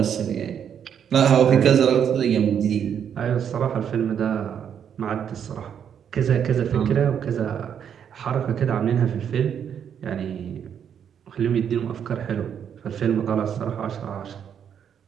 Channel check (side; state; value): left; quieter; 8.4 dB